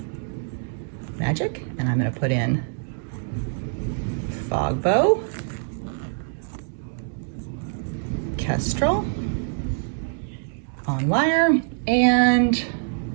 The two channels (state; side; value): silent; left; 62 dB below the other